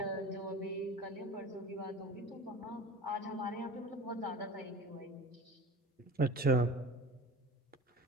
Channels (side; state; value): both; normal; correlation 0.37